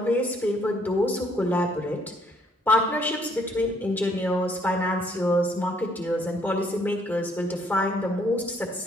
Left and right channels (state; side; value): normal; both; correlation 0.66